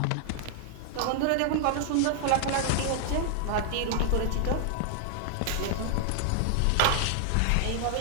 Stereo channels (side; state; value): both; different; correlation 0.00